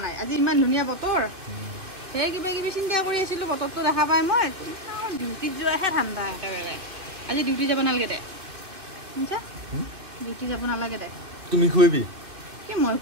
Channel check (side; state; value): left; late; 2.5 ms